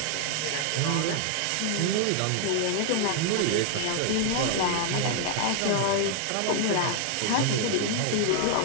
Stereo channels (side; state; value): both; different; correlation 0.00